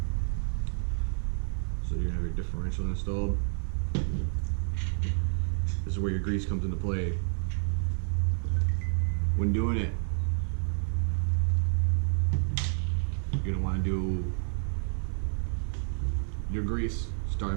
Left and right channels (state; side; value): silent; left; 58 dB below the other